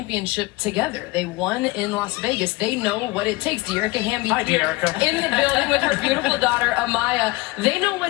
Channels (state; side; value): quieter; right; 21.6 dB